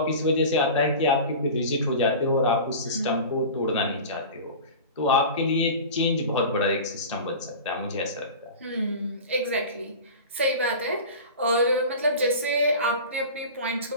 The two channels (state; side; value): inverted; both; correlation -0.34